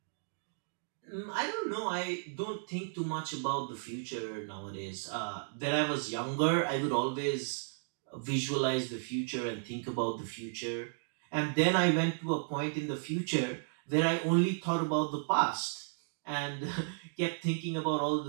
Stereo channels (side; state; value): left; silent; digital silence